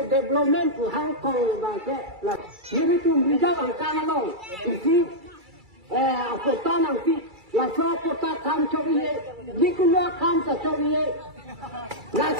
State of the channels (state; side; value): late; left; 2.3 ms